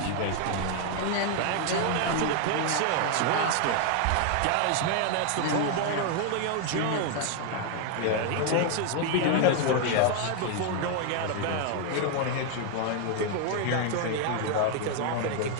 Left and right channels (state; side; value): different; both; correlation 0.00